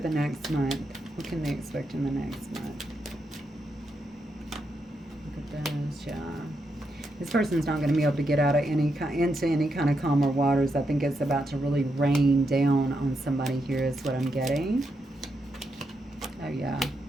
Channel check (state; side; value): normal; both; correlation 0.82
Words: the next month. What can they expect in the next month? Look at this, yeah. This person's not going to be able to get out of into any kind of calmer waters. I think it's about to really rain down on somebody here is what I'm getting. Oh, yeah.